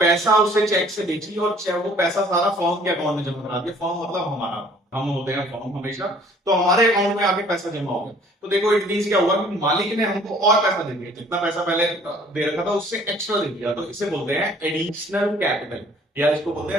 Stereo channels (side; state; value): both; normal; correlation 0.55